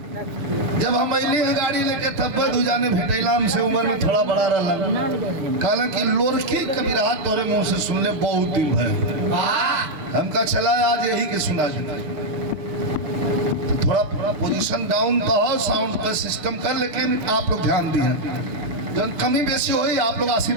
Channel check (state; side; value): late; left; 6.6 ms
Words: जब हम अली गाड़ी लेके तब दूजाने भेटैला हमसे उम्र में थोड़ा बड़ा रहा कहला कि लोरकी का बिरहा तोरे मुंह से सुन ले बहुत दिन भय हमका चला आज यही के सुना देना। तो थोड़ा पोजीशन डाउन तो हो साउंड का सिस्टम कर, लेकिन आप लोग ध्यान दिए जब कमी बेसी हुई आप लोग